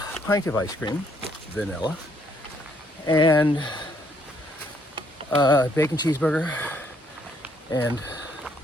pint of ice cream, vanilla, and a bacon cheeseburger, and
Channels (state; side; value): normal; both; correlation 0.69